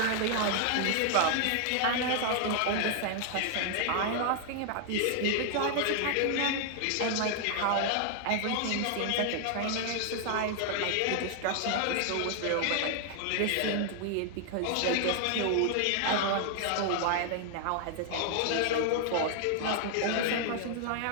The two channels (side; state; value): both; different; correlation 0.00